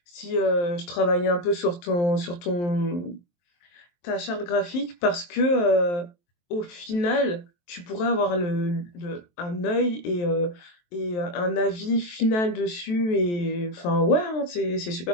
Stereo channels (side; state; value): right; late; 23 ms